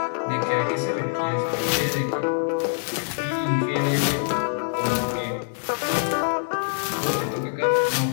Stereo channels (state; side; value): silent; right; digital silence